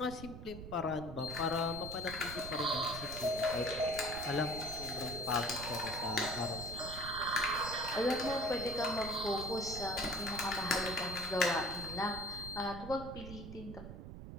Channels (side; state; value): right; noise; rumble, 10 dB below the sound